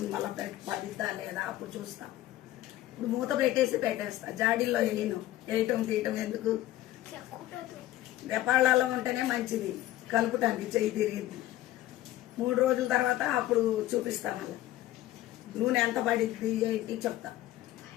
మళ్ళీ పడిద్దా లేదా అప్పుడు చూస్తాం. ఇప్పుడు మూత పెట్టేస్తా. జాడీల్లో వేయటం తీయటం ఎందుకు? దెపాళ్ళలో ఉంటేనే మంచిది కలుపుటానికి, చెయ్యి తిరిగింది. 3 రోజుల తర్వాత అప్పుడు చూపిస్తాం. మళ్ళీ నూనె ఎంత పడిద్ది ఏంటి చెప్తా.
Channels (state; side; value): quieter; right; 14.9 dB